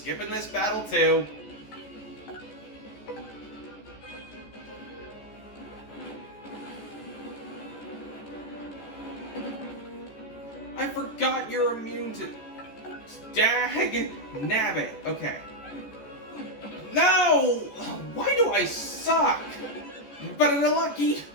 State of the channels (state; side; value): late; right; 14 ms